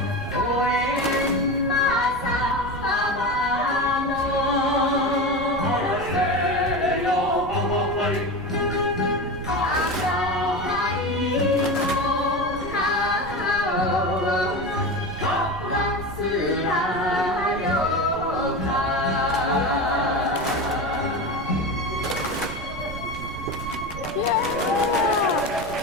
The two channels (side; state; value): right; noise; rumble, 12 dB below the sound